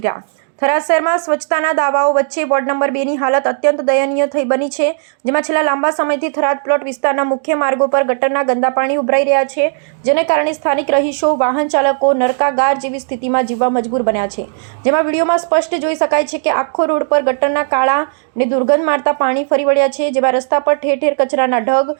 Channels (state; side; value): silent; left; digital silence